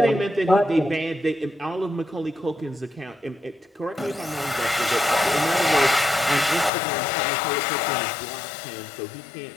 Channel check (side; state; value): right; drops out; at 6.7 s